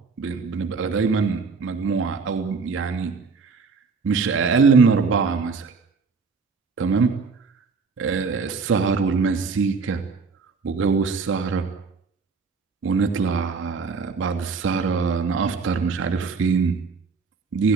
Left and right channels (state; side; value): quieter; left; 4.8 dB